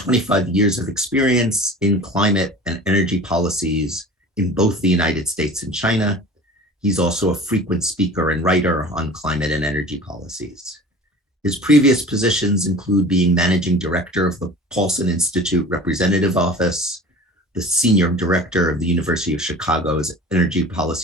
years of experience in climate and energy policies in both the United States and China. He's also a frequent speaker and writer on climate and energy policies. His previous positions include being managing director of the Paulson Institute Representative Office, the senior director of the University of Chicago's Energy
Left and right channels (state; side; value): normal; both; correlation 0.40